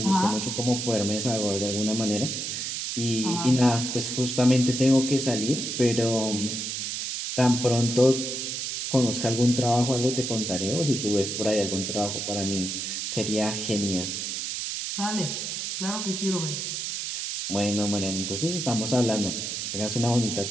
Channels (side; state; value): right; noise; hiss, 3 dB below the sound